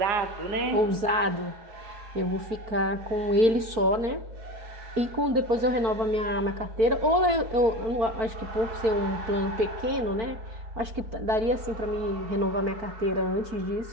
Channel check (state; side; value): late; left; 4.5 ms